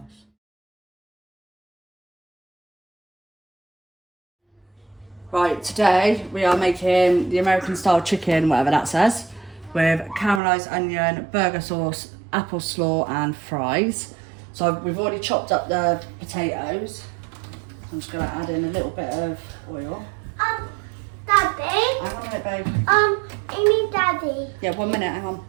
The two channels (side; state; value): left; drops out; at 10.4 s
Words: Right, today we are making the American style chicken, whatever that says, with caramelised onion, burger sauce, apple slaw and fries. So we've already chopped up the potatoes. I'm just going to add in a little bit of oil. Daddy? Hang on a minute, babe. I need Daddy. Yeah, 1 minute, hang on.